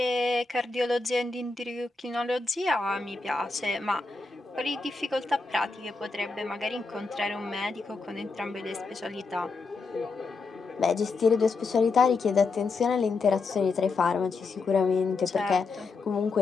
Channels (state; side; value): quieter; right; 4.1 dB